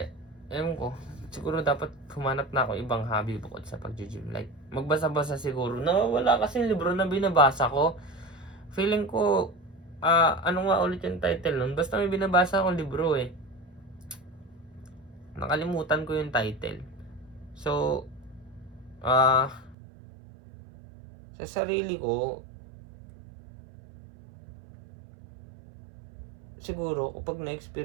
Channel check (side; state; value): left; drops out; at 19.8 s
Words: ewan ko, siguro dapat humanap na ako ibang hobby bukod sa pag-gym. Like magbasa-basa siguro. Wala kasi libro na binabasa ko. Feeling ko, ano nga ulit yung title nun? Basta may binabasa akong libro Nakalimutan ko yung title. So, sa sarili ko, siguro, kapag